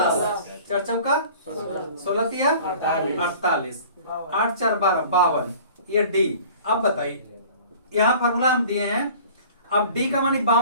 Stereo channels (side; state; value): both; inverted; correlation -0.46